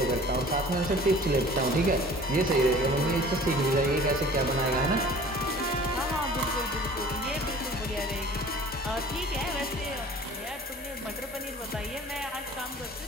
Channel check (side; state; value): both; normal; correlation 0.46